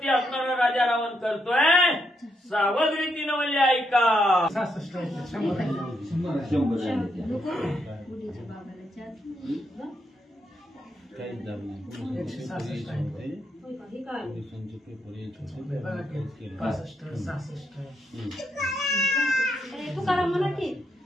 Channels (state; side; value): normal; both; correlation 0.79